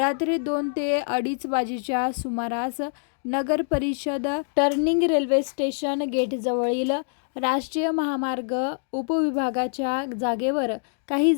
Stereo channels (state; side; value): silent; right; digital silence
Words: 2 ते 2:30 वाजेच्या सुमारास नगर परिषद टर्निंग रेल्वे स्टेशन गेटजवळील राष्ट्रीय महामार्ग उपविभागाच्या जागेवर काही